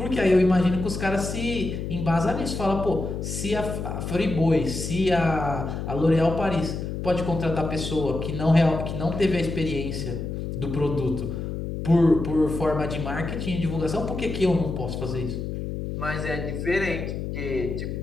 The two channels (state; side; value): noise; left; hum, 5 dB below the sound